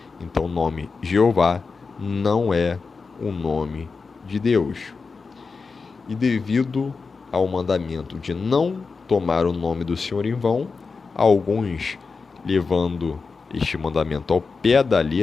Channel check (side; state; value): right; quieter; 4.6 dB